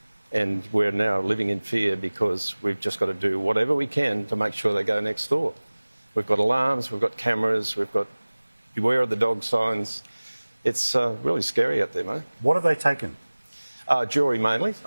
And we're now living in fear because we've just got to do whatever we can to make sure they go next door. We've got alarms, we've got cameras, we've got beware of the dog signs. It's really scary out there, mate. What have they taken? Jewellery mainly,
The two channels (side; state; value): both; inverted; correlation -1.00